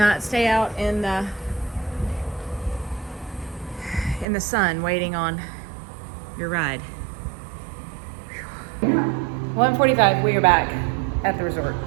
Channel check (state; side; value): drops out; left; at 4.2 s